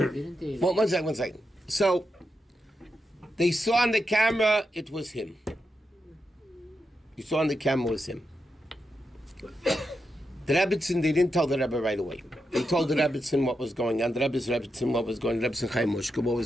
they? Well, one second. So, they saw on the camera it was him. You saw on the camera it was him. The Rebbitzin, they didn't tell the Rebbe right away. They told the Rebbitzin what was going on. The Rebbe's Rebbitzin what was going on. Rebbitzin Chaim Mushka what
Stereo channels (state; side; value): normal; both; correlation 0.86